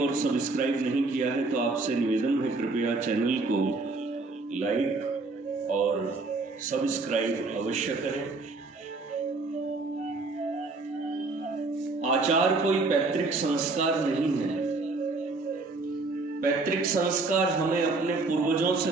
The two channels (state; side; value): quieter; left; 3.6 dB